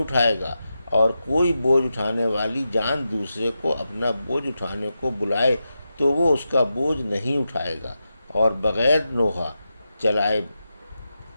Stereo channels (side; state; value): both; inverted; correlation -0.89